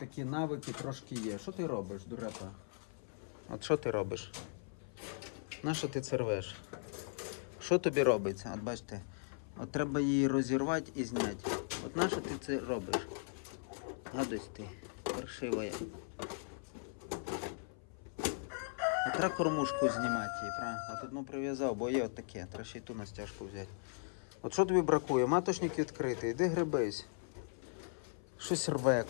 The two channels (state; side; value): silent; right; 52 dB below the other